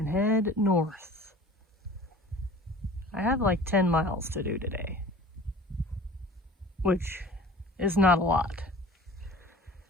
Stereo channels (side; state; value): both; normal; correlation 0.43